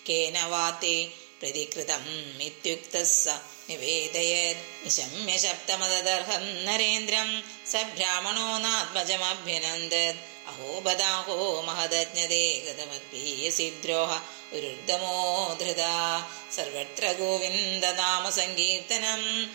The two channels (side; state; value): left; silent; digital silence